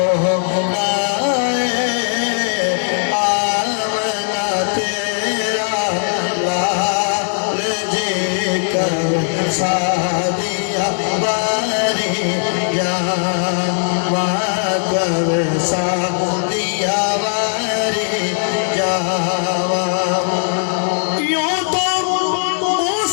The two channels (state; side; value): silent; right; 64 dB below the other